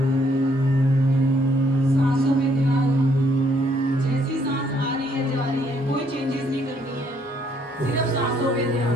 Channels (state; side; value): normal; both; correlation 0.68